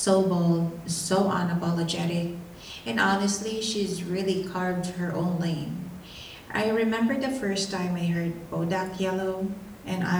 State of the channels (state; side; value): identical; both; correlation 1.00